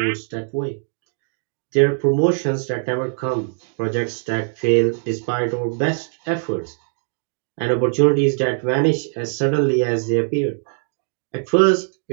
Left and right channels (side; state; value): left; silent; digital silence